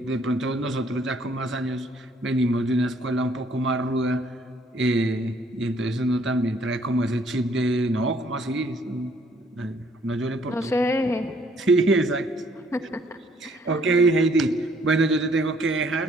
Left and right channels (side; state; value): both; normal; correlation 0.64